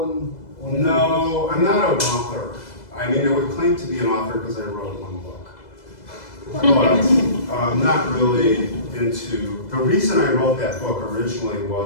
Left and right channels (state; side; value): late; right; 2.0 ms